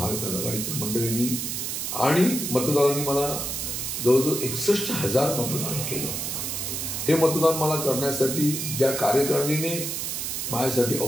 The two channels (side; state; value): right; noise; hiss, 3 dB below the sound